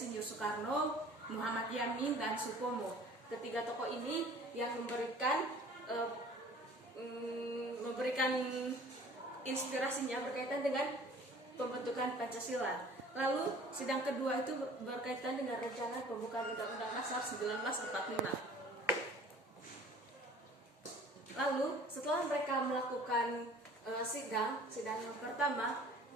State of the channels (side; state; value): both; normal; correlation 0.49